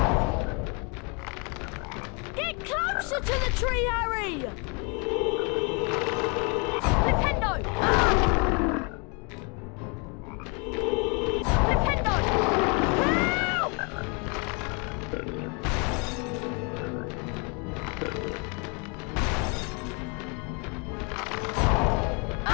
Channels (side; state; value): right; quieter; 33.6 dB